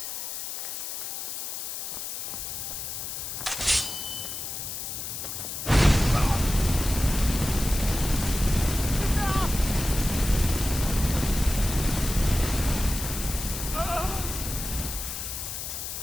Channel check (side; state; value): left; noise; hiss, 5 dB below the sound